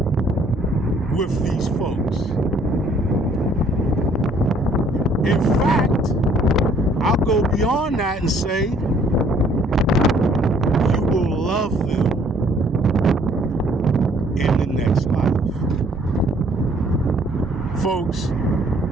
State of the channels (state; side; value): normal; both; correlation 0.61